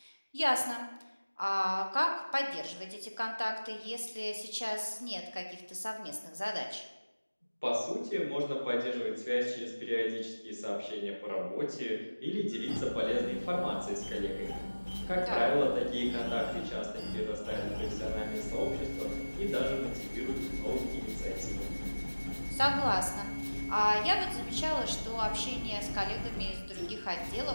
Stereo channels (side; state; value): both; inverted; correlation -1.00